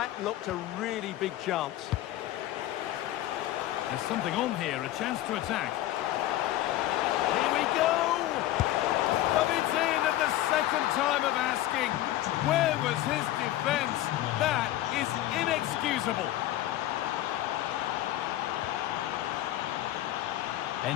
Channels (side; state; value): right; quieter; 14.5 dB